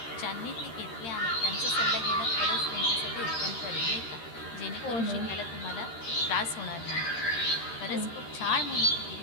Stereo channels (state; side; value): late; right; 13 ms